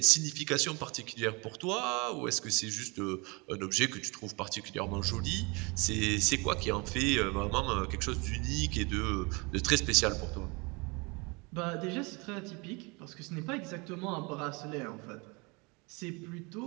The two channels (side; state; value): left; quieter; 28.2 dB